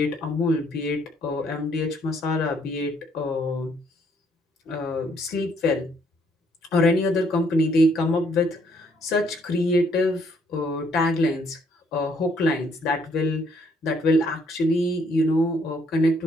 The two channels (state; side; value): normal; both; correlation 0.68